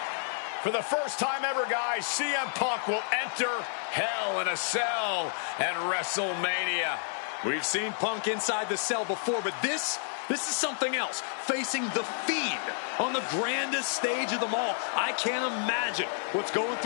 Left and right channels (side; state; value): right; silent; digital silence